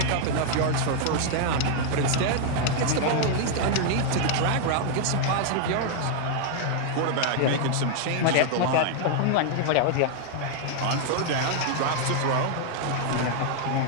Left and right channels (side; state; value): both; different; correlation 0.00